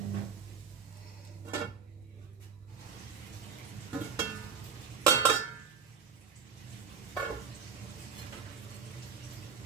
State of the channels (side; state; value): left; quieter; 6.4 dB